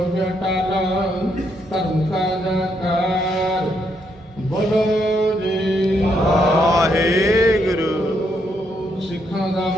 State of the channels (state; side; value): normal; both; correlation 0.76